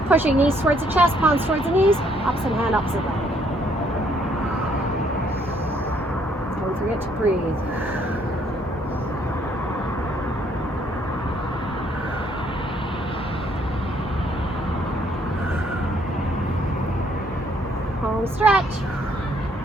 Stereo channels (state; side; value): normal; both; correlation 0.67